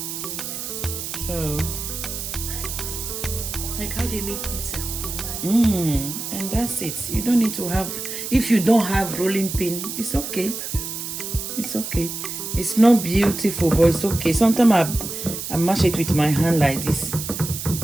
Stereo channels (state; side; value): noise; right; hiss, 6 dB below the sound